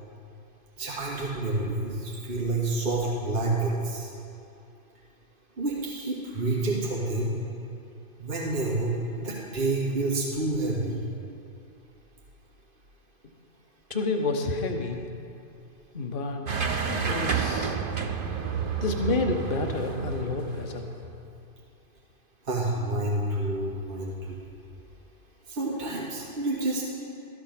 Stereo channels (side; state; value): left; late; 2.5 ms